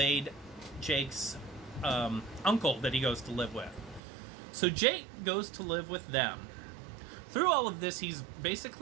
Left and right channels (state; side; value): drops out; left; at 4.0 s